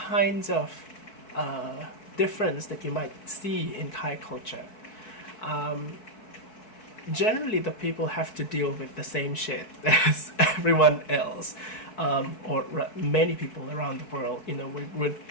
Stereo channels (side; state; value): right; late; 4.6 ms